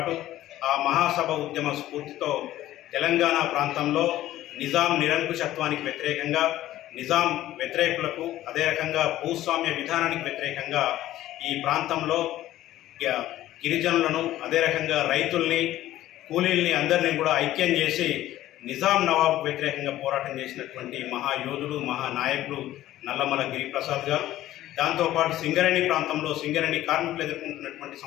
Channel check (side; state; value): right; quieter; 14.3 dB